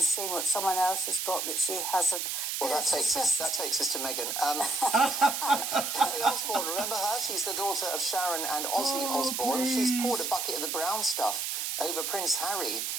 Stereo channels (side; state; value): right; noise; hiss, 2 dB below the sound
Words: seeing what someone else has got that she hasn't. Well, that takes us to Meghan. Kelly Osbourne, remember her? She's the daughter of Sharon and Ozzy Osbourne. Please. She's poured a bucket of the brown stuff over Prince Harry